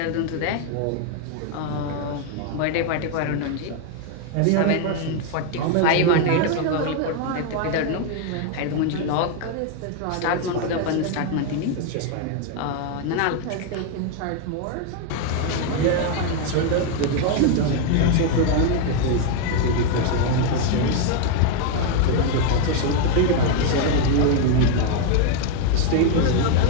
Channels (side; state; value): both; different; correlation 0.01